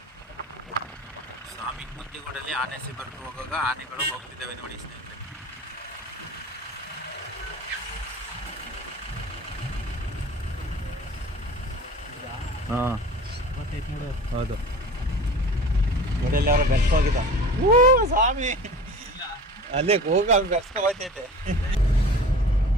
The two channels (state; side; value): normal; both; correlation 0.39